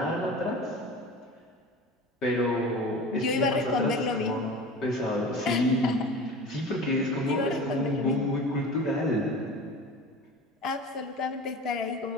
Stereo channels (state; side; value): normal; both; correlation 0.35